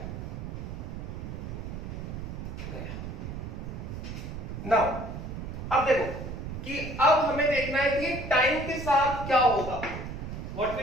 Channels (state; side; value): noise; right; rumble, 7 dB below the sound